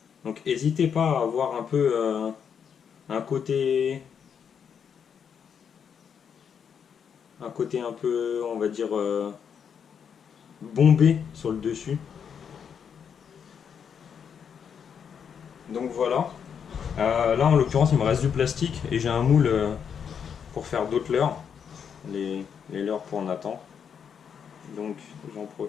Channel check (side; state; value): right; quieter; 7.4 dB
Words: Donc n'hésitez pas à avoir un peu un côté un peu, on va dire, bombé sur le dessus. Donc voilà. Là en l'occurrence il me reste du plastique et j'ai un moule pour faire d'autres leurres, les leurres pour Nathan. Donc j'en